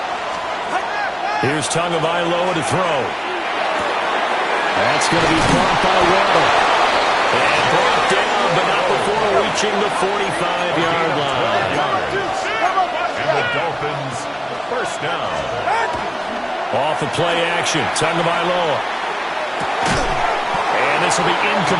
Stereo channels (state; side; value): identical; both; correlation 1.00